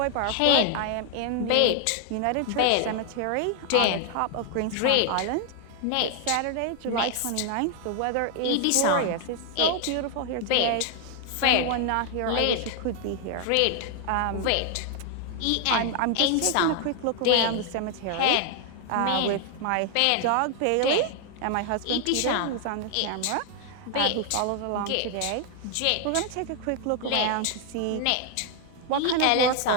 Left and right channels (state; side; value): different; both; correlation 0.00